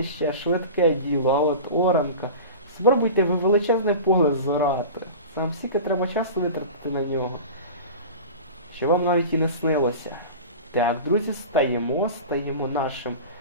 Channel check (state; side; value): inverted; both; correlation -0.33